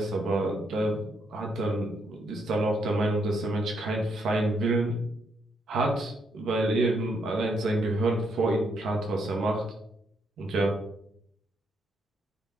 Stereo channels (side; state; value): both; normal; correlation 0.76